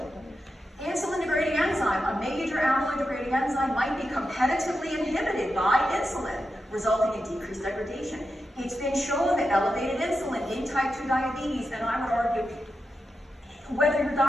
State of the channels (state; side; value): normal; both; correlation 0.89